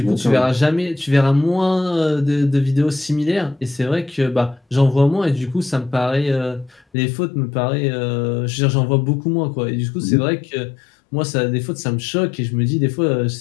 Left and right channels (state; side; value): drops out; right; at 6.9 s